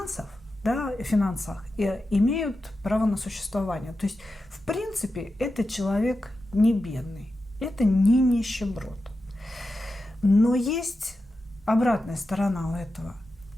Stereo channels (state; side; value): normal; both; correlation 0.91